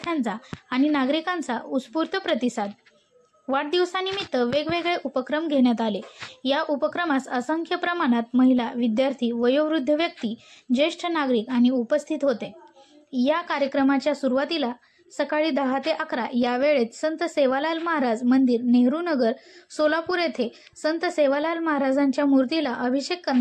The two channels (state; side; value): identical; both; correlation 1.00